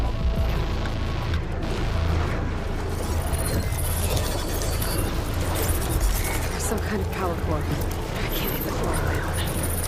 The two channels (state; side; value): identical; both; correlation 1.00